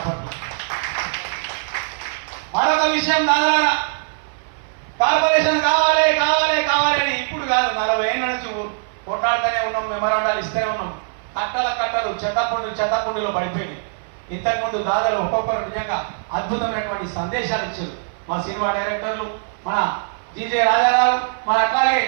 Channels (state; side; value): silent; left; 55 dB below the other